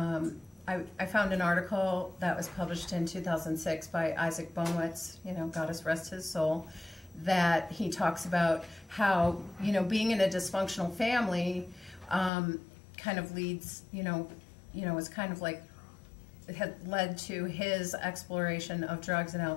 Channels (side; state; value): right; drops out; at 12.3 s